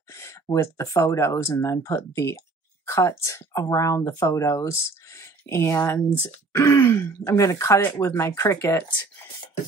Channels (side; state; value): left; quieter; 3.7 dB